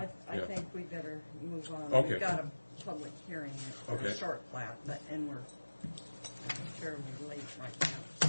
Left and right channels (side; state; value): both; inverted; correlation -1.00